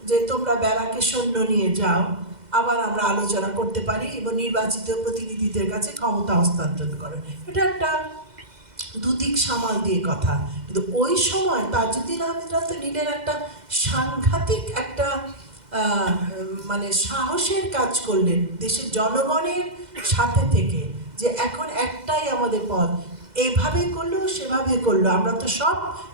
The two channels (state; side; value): late; left; 2.0 ms